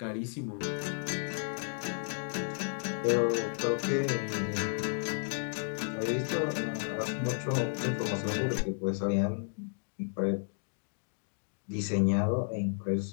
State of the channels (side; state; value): right; silent; digital silence